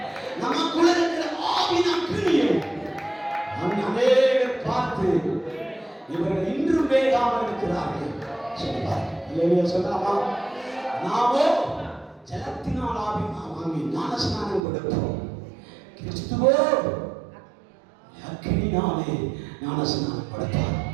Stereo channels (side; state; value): left; drops out; at 14.6 s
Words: நமக்குள்ள இருக்கிற ஆவின் அக்கினியை அநேகர் பார்த்து இவர்கள் இன்றும் வேகாமல் இருக்கிறார்கள் சொல்லுவார். இல்லையா சொல்லாமா? நாமோ ஜலத்தினால் வாங்கி ஞானஸ்நானம் கொடுப்போம். கிறிஸ்துவோ அக்கினினாலே ஞானஸ்நானம் கொடுப்பார்.